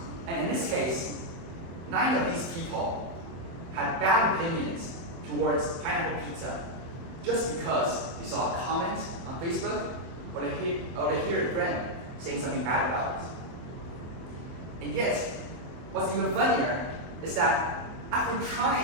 And in this case, 9 of these people had bad opinions towards pineapple pizza just because they saw a comment on Facebook or they hear a friend saying something bad about it. And yet, what's even funnier is that after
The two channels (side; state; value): left; late; 24 ms